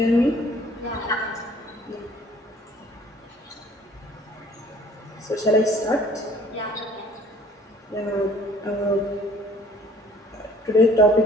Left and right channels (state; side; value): normal; both; correlation 0.55